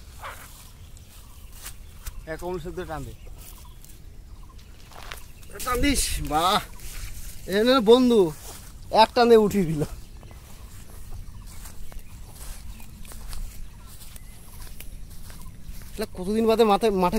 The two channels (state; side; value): identical; both; correlation 1.00